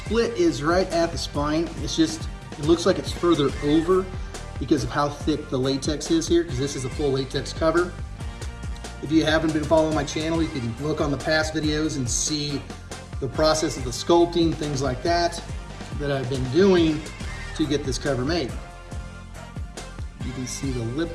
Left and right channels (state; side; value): identical; both; correlation 1.00